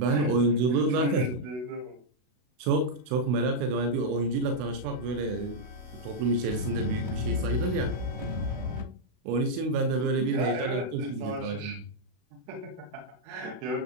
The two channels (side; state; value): left; late; 32 ms